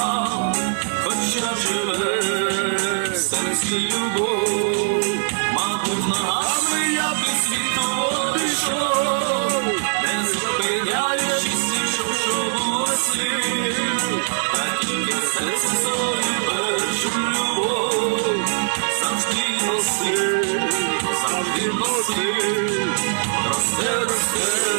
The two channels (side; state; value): left; silent; digital silence